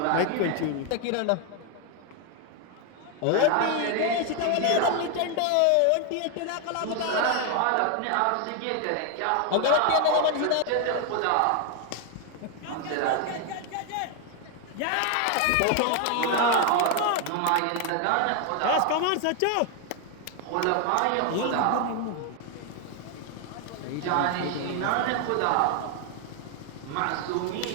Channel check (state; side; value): different; both; correlation 0.00